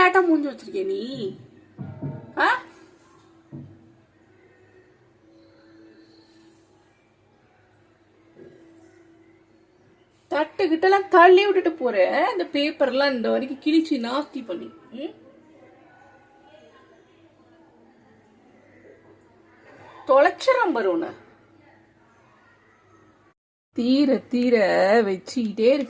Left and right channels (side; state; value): both; identical; correlation 1.00